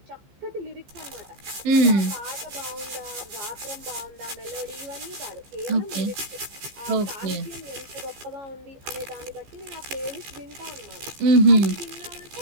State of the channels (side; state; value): left; late; 15 ms